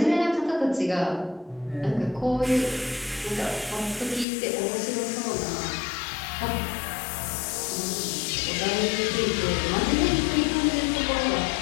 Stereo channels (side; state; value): right; drops out; at 4.2 s